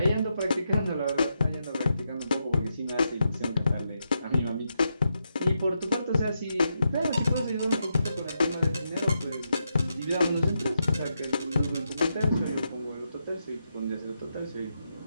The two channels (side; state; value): both; inverted; correlation -0.84